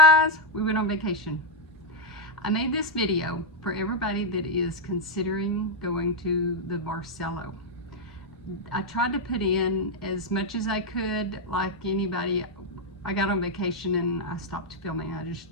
We went on vacation. I made this video for everybody that is considering going to the Barceló. I tried to put in as much as I could, like anybody. I got on vacation and I stopped filming.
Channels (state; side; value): normal; both; correlation -0.01